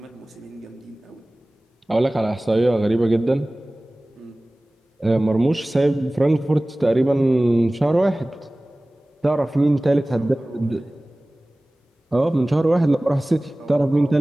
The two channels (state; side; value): normal; both; correlation 0.98